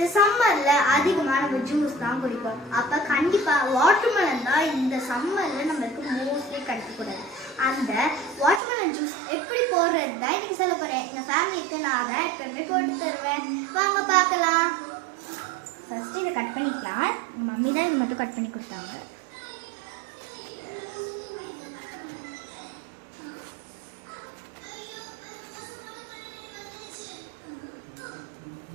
சம்மர்ல அதிகமா நம்ம ஜூஸ் தான் குடிப்போம். அப்ப கண்டிப்பா வாட்டர்மெலன் தான் இந்த சம்மர்ல நமக்கு மோஸ்ட்லி கிடைக்க கூடாது. அந்த வாட்டர்மெலன் ஜூஸ் எப்படி போடுறது தான் இன்னைக்கு சொல்ல போறேன். எங்க ஃபேமிலிக்கு நான் தான் எப்பவுமே போட்டு தருவேன். வாங்க பார்க்கலாம். ஃபர்ஸ்ட் இதை கட் பண்ணிக்கலாம். மம்மி தான் இது மட்டும் கட் பண்ணி கொடுத்தாங்க.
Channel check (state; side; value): drops out; left; at 8.6 s